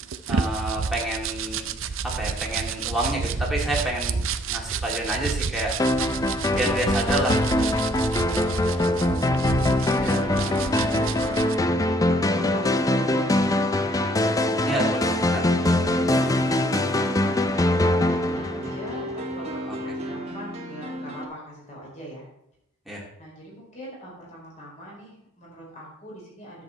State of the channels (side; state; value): both; normal; correlation 0.65